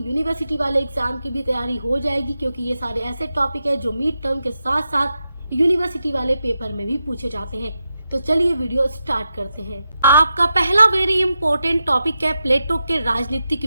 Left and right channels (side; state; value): both; inverted; correlation -0.88